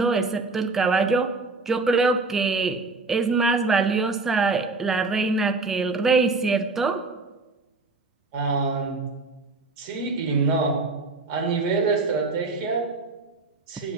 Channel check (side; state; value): left; quieter; 3.6 dB